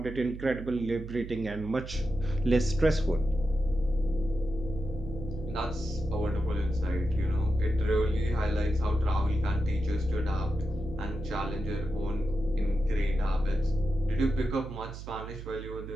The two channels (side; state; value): right; noise; hum, 10 dB below the sound